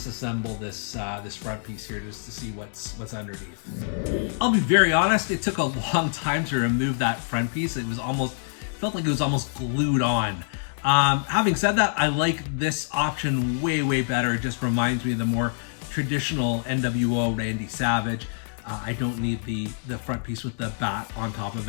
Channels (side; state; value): right; silent; digital silence